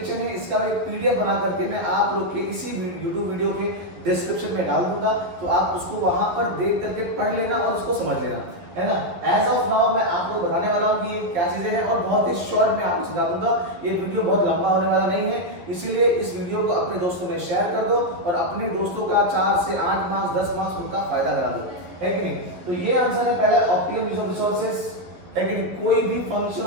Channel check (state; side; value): late; left; 11 ms